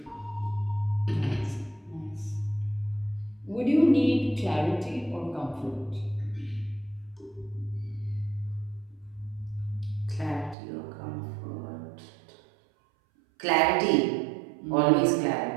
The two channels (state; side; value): drops out; left; at 10.6 s